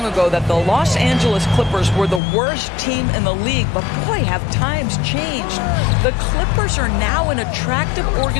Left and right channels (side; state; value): right; drops out; at 2.2 s